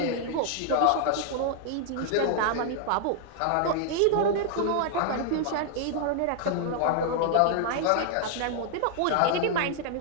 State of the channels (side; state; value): both; different; correlation 0.00